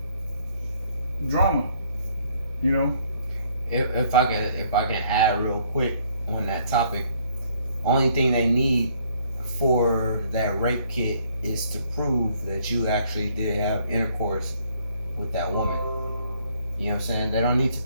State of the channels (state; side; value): inverted; both; correlation -0.65